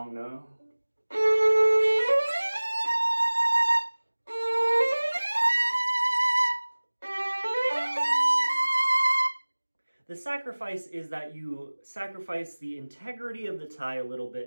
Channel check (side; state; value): both; inverted; correlation -1.00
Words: note. The sacrifice is that you sacrifice the integrity of the tie a little